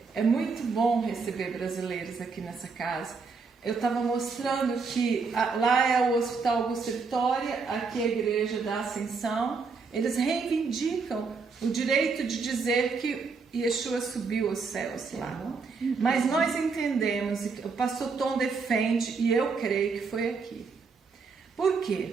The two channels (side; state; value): left; quieter; 4.8 dB